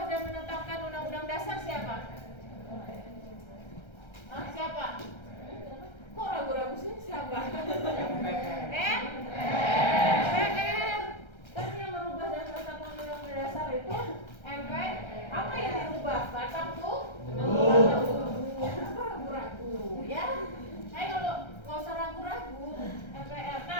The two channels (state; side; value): late; right; 1.3 ms